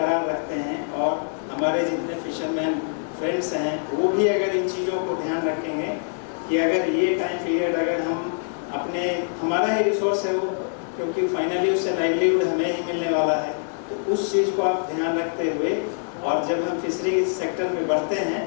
रखते हैं और हमारे जितने फिशरमैन फ्रेंड्स हैं वो भी अगर इन चीज़ों को ध्यान रखेंगे कि अगर ये टाइम पीरियड अगर हम अपने, हमारा ही रिसोर्स है वो, क्योंकि फाइनली उससे लाइवलीहुड हमें ही मिलने वाला है, तो उस चीज़ को आप ध्यान रखते हुए और जब हम फिशरी सेक्टर में बढ़ते हैं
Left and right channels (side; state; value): right; silent; 62 dB below the other